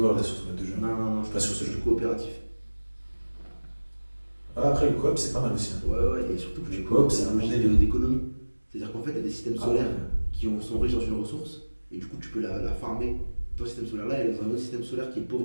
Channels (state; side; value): inverted; both; correlation -1.00